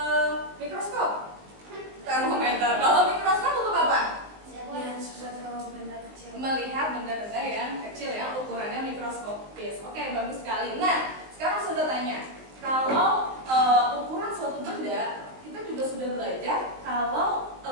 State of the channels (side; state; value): left; late; 19 ms